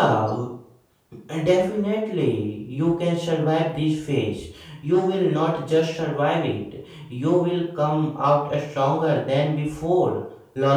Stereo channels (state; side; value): identical; both; correlation 1.00